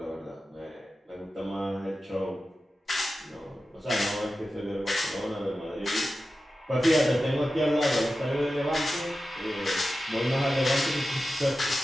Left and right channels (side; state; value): both; normal; correlation 0.93